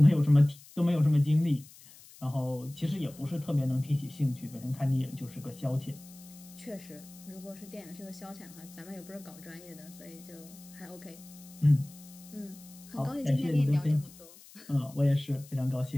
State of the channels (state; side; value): noise; left; hiss, 21 dB below the sound